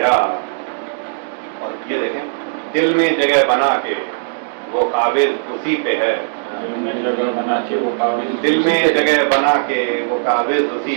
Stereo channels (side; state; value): left; silent; digital silence